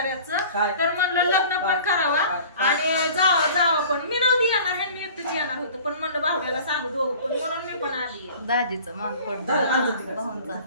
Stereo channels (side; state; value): both; inverted; correlation -0.45